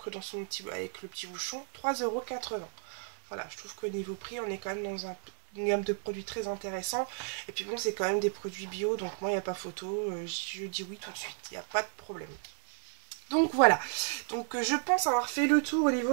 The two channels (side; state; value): left; silent; 56 dB below the other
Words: dans son petit avec le petit bouchon 3,80 €. Voilà, je trouve qu'au niveau prix on est quand même dans une gamme de produits très intéressant. Et puis bon, c'est quand même des produits bio, donc moi il n'y a pas photo, je dis oui tout de suite, il n'y a pas de problème. Donc voilà, donc je pense avoir fait le tour au